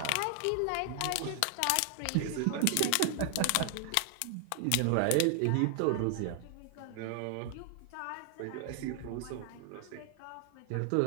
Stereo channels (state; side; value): different; both; correlation 0.00